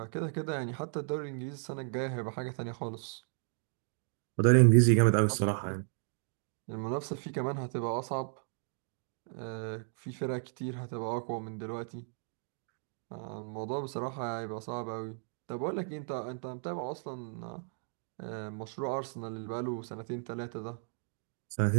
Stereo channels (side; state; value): left; silent; 55 dB below the other